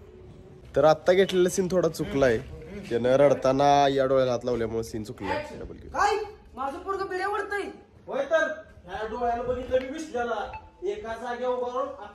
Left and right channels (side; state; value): both; identical; correlation 1.00